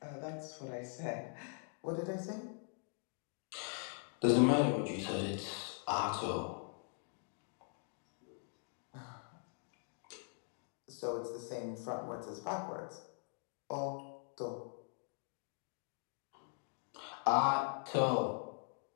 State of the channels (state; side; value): silent; right; 50 dB below the other